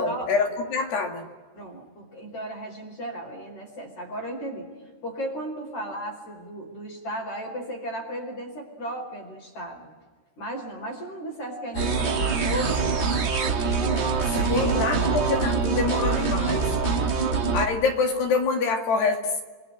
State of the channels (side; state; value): right; late; 13 ms